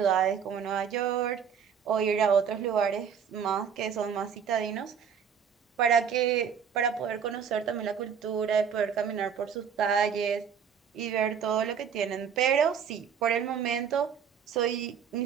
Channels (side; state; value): left; quieter; 7.4 dB